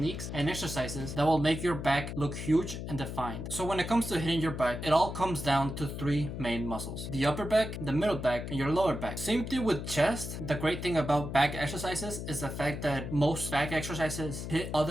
and exercises that will make your back look huge and defined. So when it comes to hitting your back, it all comes down to three main muscles: the upper back, the middle back, and your lower back. Same thing with chest. The great thing about back exercises is the fact that most back exercises hit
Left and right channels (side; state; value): left; noise; hum, 6 dB below the sound